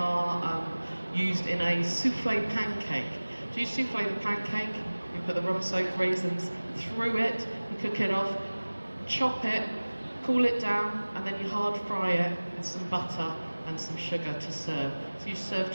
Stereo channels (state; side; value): inverted; both; correlation -1.00